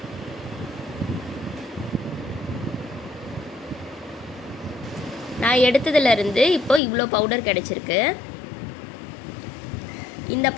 நான் எடுத்ததுலேருந்து இப்போ இவ்வளோ பவுடர் கிடச்சிருக்கு. இந்த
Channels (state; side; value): drops out; right; at 6.8 s